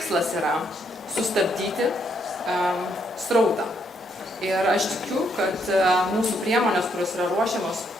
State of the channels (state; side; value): normal; both; correlation 0.74